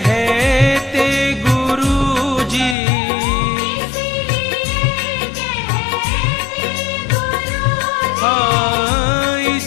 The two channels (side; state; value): right; drops out; at 2.8 s